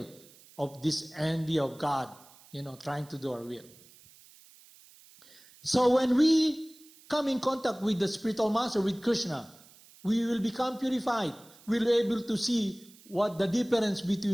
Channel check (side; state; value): right; noise; hiss, 24 dB below the sound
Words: of this envy of God, trying to do our will. So when we come in contact with the spiritual master, with Krishna, we will become purified. We'll be able to see what the difference